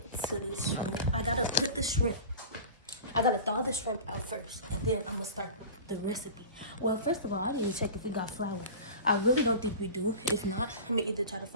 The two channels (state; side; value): inverted; both; correlation -0.35